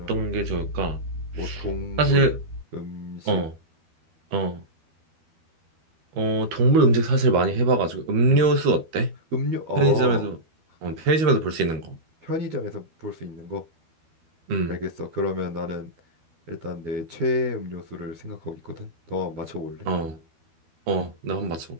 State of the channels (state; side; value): late; left; 12 ms